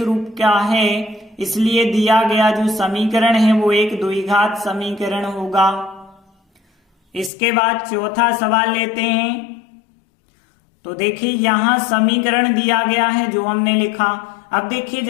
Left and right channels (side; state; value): right; drops out; at 7.3 s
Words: रूप का है इसलिए दिया गया जो समीकरण है वो एक द्विघात समीकरण होगा। इसके बाद चौथा सवाल लेते हैं। तो देखिए यहाँ समीकरण दिया गया है जो हमने लिखा। अब देखिए